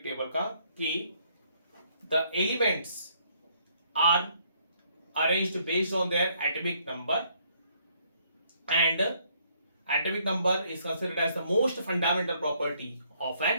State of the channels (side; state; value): both; inverted; correlation -0.68